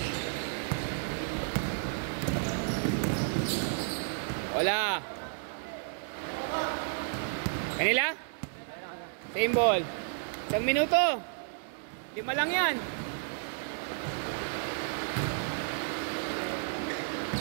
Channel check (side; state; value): left; silent; digital silence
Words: Wala. Kanila? Same ball. 1 minuto. 5 lang yan.